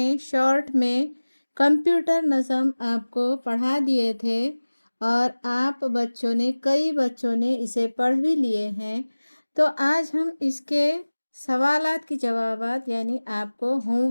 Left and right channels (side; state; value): both; inverted; correlation -1.00